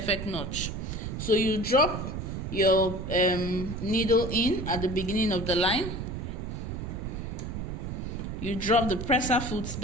knot. So you drop your needle in at the beginning of the line. You drop the presser foot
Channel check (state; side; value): noise; right; rumble, 5 dB below the sound